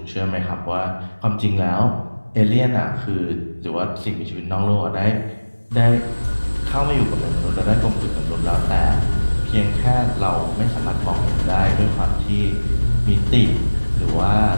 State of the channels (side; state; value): both; inverted; correlation -1.00